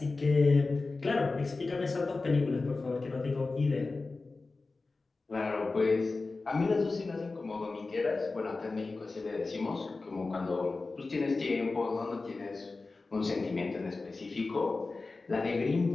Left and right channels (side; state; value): right; quieter; 3.7 dB